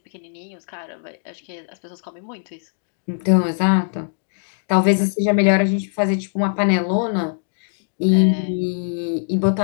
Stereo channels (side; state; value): right; silent; digital silence